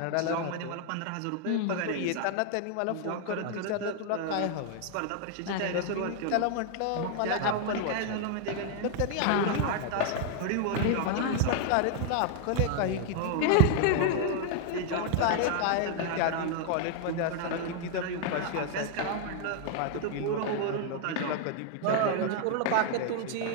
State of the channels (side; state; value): both; different; correlation 0.00